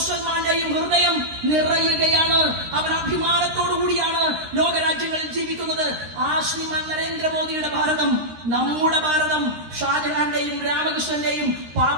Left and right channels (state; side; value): late; left; 13 ms